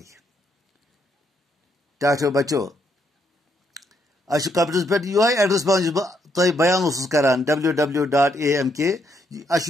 ٹاٹھیو بچو اسہِ چھُ کمپیوٗٹرس پٮ۪ٹھ یِہوے ایڈرس پیوان یُس بہٕ تۄہہِ بیان اوسُس کران www.amk اسہِ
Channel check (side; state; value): both; normal; correlation 0.74